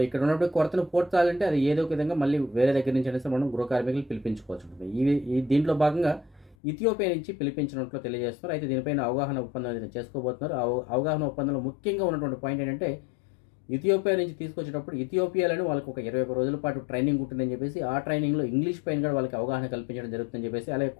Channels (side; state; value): right; drops out; at 6.6 s